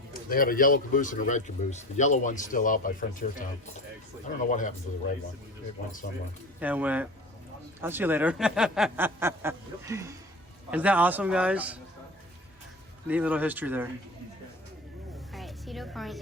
they had a yellow caboose and a red caboose. The yellow one's still out by Frontier Town. I don't know what happened to the red one. It went somewhere. Yeah, it went. I'll see you later. Isn't that awesome, guys? Neat little history there. Alright, Cedar Point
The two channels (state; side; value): normal; both; correlation 0.35